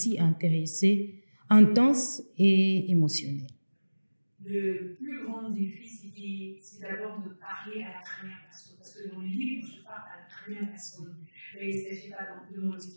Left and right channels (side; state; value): both; inverted; correlation -1.00